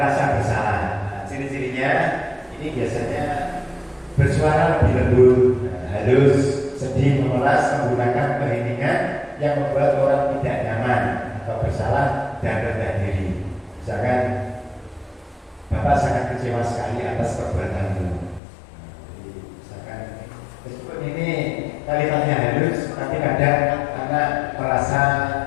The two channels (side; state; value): right; drops out; at 18.4 s